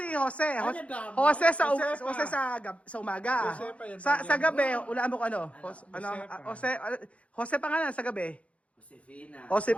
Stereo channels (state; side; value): late; right; 0.063 ms